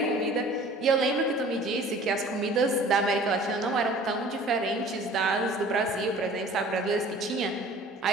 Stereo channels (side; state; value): both; normal; correlation 0.48